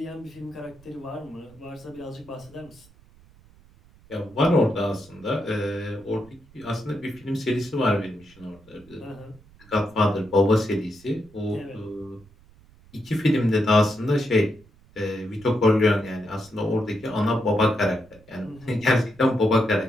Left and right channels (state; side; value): noise; right; rumble, 26 dB below the sound